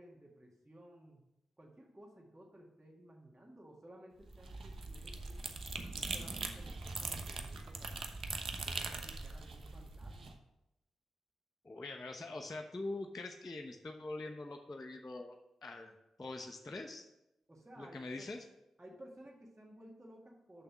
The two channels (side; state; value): both; normal; correlation 0.84